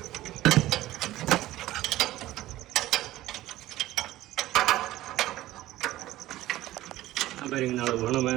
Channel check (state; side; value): quieter; left; 15.6 dB